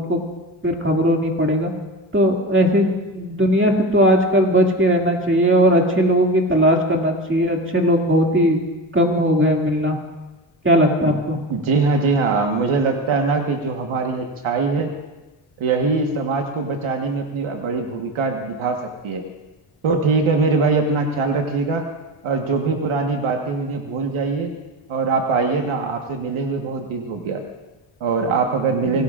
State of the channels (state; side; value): normal; both; correlation 0.24